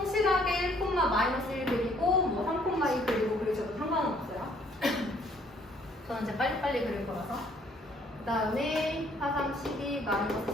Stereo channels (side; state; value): both; normal; correlation 0.63